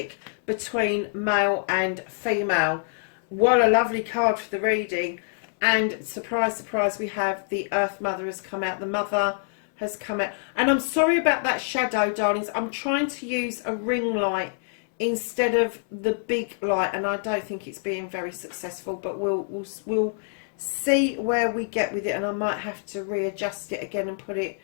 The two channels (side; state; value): right; silent; 61 dB below the other